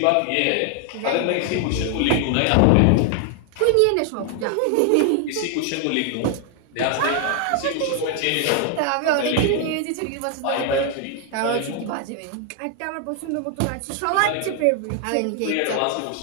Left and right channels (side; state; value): both; different; correlation 0.00